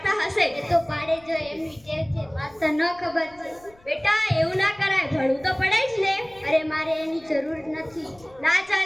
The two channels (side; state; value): left; noise; rumble, 28 dB below the sound